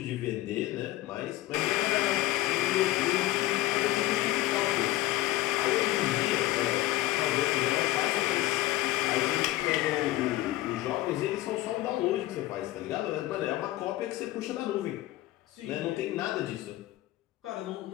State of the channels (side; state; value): right; quieter; 16.4 dB